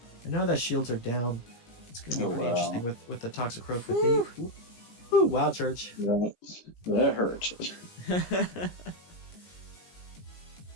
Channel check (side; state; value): right; late; 17 ms